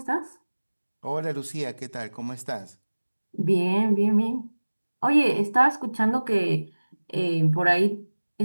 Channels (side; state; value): both; inverted; correlation -1.00